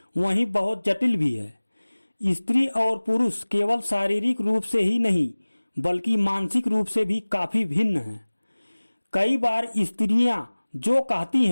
वहीं बहुत जटिल भी है। स्त्री और पुरुष केवल शारीरिक रूप से ही नहीं बल्कि मानसिक रूप से भी काफी भिन्न हैं। कई बार स्त्रियां जो कहती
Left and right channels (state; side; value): inverted; both; correlation -1.00